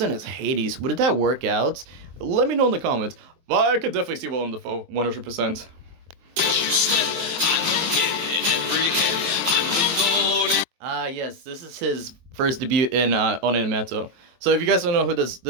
as Hades. Would that work out? Let me know in the comments. But I could definitely see Willem Dafoe, 100%. Yes, this is his first debut in on MANTLE. So if you guys don't know who this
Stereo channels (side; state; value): left; late; 23 ms